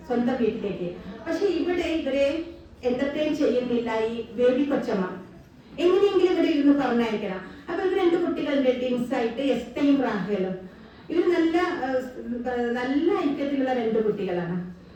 സ്വന്തം വീട്ടിലേക്ക്. പക്ഷെ ഇവരെ എന്റർടൈൻ ചെയ്യുന്നില്ല ഈ ബേബി കൊച്ചമ്മ. എങ്ങനെയെങ്കിലും ഇവരെ ഇരുന്ന് പറഞ്ഞയക്കണം. അപ്പൊ ഇവർ 2 കുട്ടികളുടെ ടിൻസ് ആയിട്ട് എസ്തയും റാഹേലും. ഇവർ നല്ല ഐക്യത്തിലുള്ള 2 കുട്ടികളാണ്.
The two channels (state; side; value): identical; both; correlation 1.00